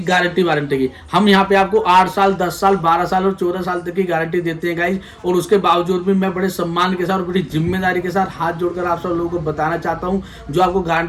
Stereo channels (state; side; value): identical; both; correlation 1.00